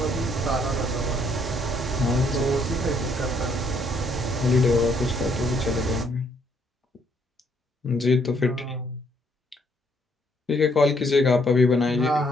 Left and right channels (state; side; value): normal; both; correlation 0.69